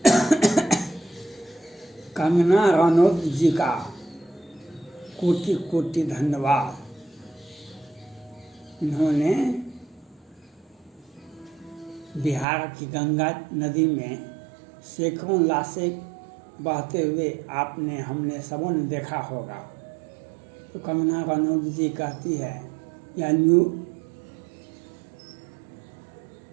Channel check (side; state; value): left; drops out; at 12.5 s